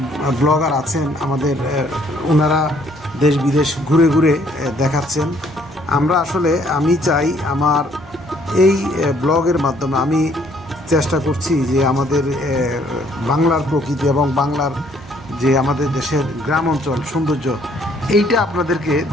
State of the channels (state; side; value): normal; both; correlation 0.64